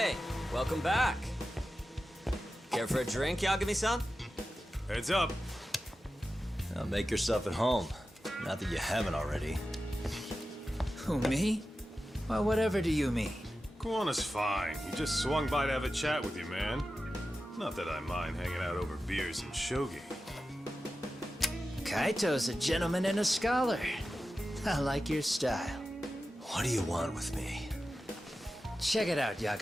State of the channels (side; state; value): both; normal; correlation 0.93